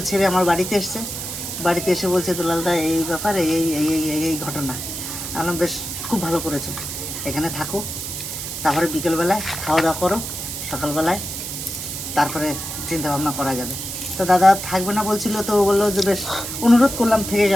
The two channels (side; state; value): right; noise; hiss, 6 dB below the sound